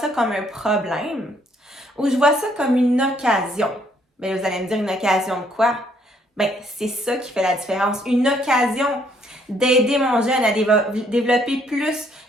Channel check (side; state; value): both; normal; correlation 0.67